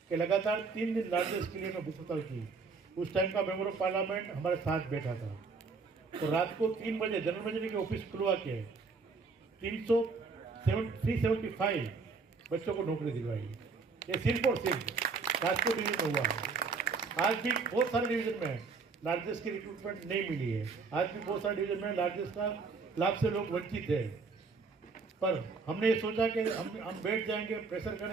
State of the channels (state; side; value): quieter; left; 4.6 dB